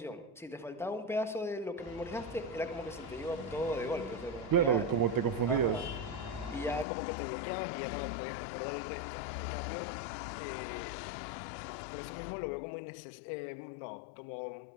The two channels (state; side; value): drops out; right; at 6.9 s